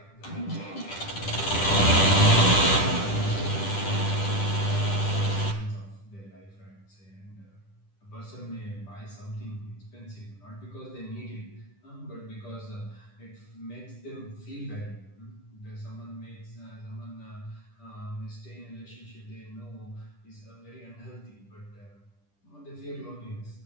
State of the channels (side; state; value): right; late; 10 ms